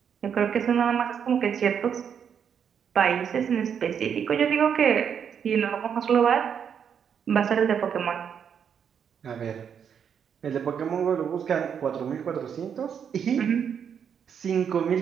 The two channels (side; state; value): left; quieter; 7.7 dB